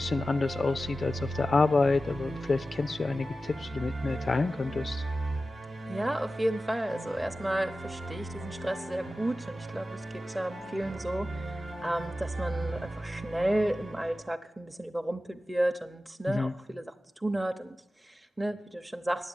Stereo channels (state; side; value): normal; both; correlation 0.94